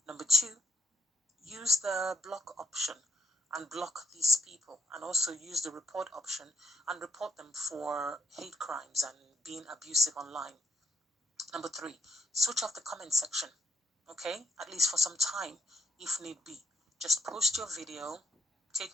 Number two, use the block option and block these people, and also use the report option and report them for hate crimes and being abusive online. Number three, switch off the comment section, okay? At least for some time, if need be. Just post your video, take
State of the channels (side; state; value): both; normal; correlation 0.73